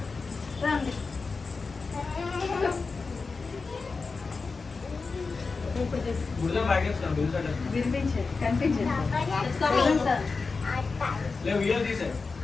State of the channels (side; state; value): right; quieter; 4.3 dB